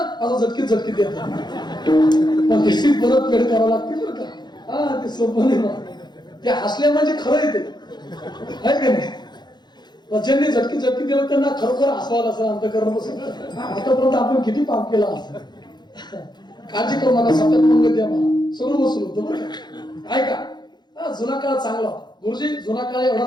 असं झटकीत देतात. पण त्याची परत फेड करावं लागते बरं का. हा ते सोपं नाही मला. ते हसल्या म्हणजे खरं येते, आहे का नाही? ज्यांनी झटकी दिलं त्यांना खरोखर हसवायला असं अंतकरण बसेल. आतापर्यंत आपण किती पाप केला असं. काळजी करू नका, सतत मंग द्या मला, सगळं वसूल होतं बरं का. ऐका, जुना काळ चांगला होता गुरुजी. जुना काळ एवढा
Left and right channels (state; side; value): late; right; 0.21 ms